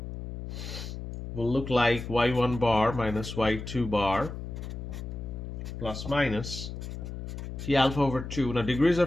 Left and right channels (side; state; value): left; noise; hum, 8 dB below the sound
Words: will look like y1 bar minus y2 bar plus minus t alpha over 2. Now degrees